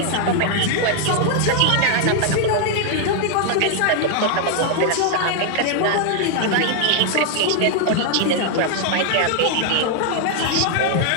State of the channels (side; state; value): both; different; correlation 0.00